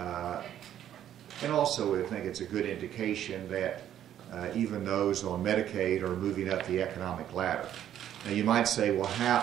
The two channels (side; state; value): left; quieter; 10.8 dB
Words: And also, I think it's a good indication that even those on Medicaid are moving up the economic ladder. Now you might say, well, how